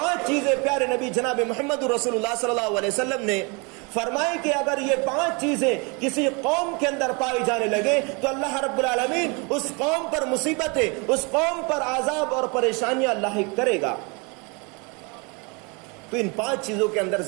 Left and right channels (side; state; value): left; quieter; 30.6 dB